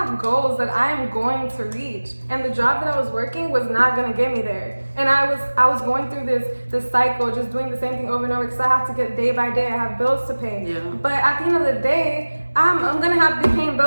goals that I am going to reach. And the job that I was working was not going to get me there. And I was going through this cycle, just doing the same thing over and over, because I have to get day by day. I have bills to pay. Yeah. But at the end of the day, I'm gonna have to be paying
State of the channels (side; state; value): both; inverted; correlation -1.00